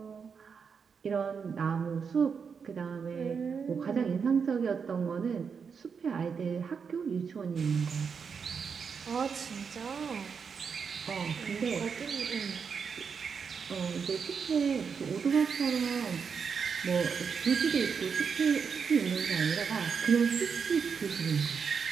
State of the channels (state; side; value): quieter; left; 6.1 dB